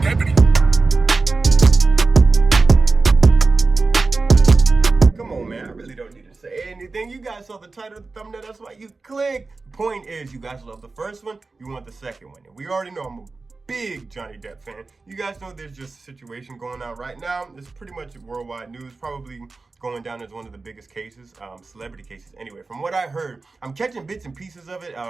deputy. Come on, man. I really don't need to say anything. You guys saw the title of the thumbnail. That's why you clicked. The point is, you guys love the first one. You want the second one. And we already know I'm a big Johnny Depp fan. You guys know there's just a situation going on right now. It's pretty much worldwide news. Probably going down as one of the biggest cases, celebrity cases. Anyway, from what I heard, I'm catching bits and pieces of it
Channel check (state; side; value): quieter; left; 3.8 dB